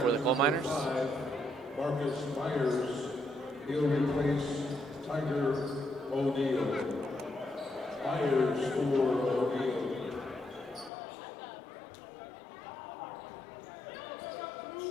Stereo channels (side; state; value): right; drops out; at 10.9 s